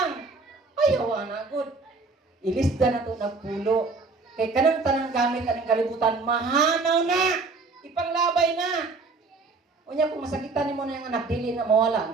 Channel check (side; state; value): left; quieter; 4.0 dB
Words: Ayaw anak. Good. Ilista na ito nagpulo. Kay kanang tanang gamit anong kalibutan, mahanaw na! Ipanglabay na! Unya kung masakitan mo na yung anak, dili na mawala,